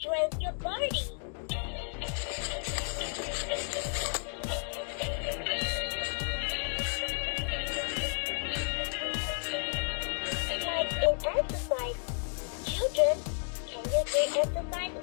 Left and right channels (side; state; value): right; silent; digital silence